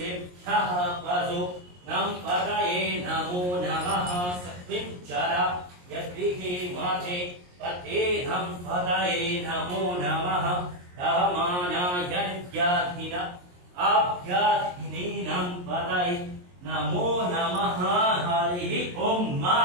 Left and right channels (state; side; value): late; left; 22 ms